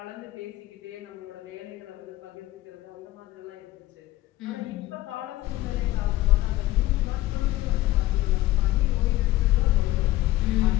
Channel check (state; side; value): quieter; right; 16.6 dB